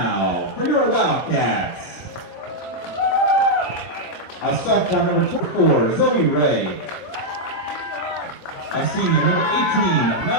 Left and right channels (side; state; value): right; late; 24 ms